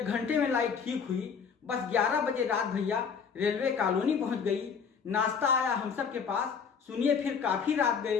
घंटे में लाइट ठीक हुई। बस 11 बजे रात भैया रेलवे कॉलोनी पहुंच गई। नाश्ता आया हम सब के पास। सुनिए फिर काफी रात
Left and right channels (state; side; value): quieter; right; 6.3 dB